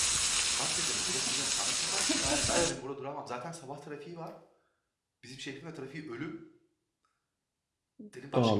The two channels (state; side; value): identical; both; correlation 1.00